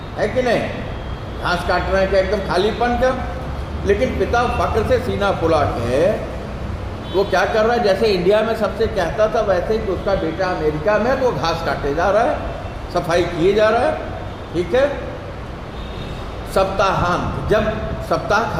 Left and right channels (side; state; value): both; identical; correlation 1.00